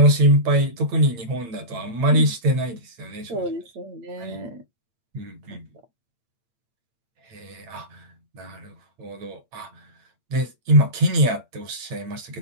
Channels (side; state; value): left; late; 8.7 ms